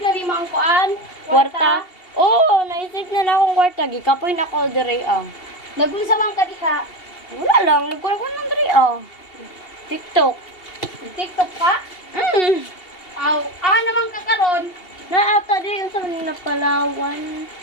na ni ang kuan. Kwarta? Oo, naisip na akong kwarta. Gikapoy na ako dire ah. Nagulsa man ka diha. Wala lang, nagkuha ko ng dire ah. TikTok. TikTok ka? Aw, naman ka karon. Naata din yung sa na Palawan.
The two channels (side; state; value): right; late; 2.7 ms